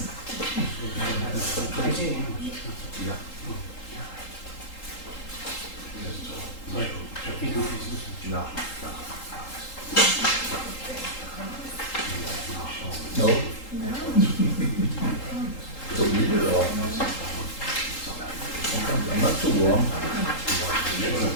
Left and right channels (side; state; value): right; late; 3.8 ms